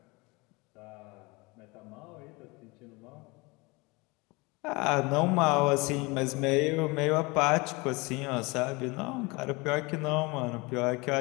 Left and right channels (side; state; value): right; quieter; 25.7 dB